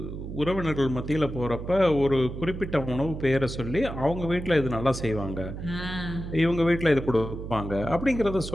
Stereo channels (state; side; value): noise; right; hum, 8 dB below the sound